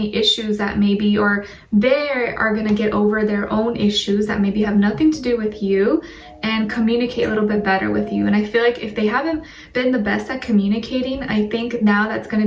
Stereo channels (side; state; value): both; identical; correlation 1.00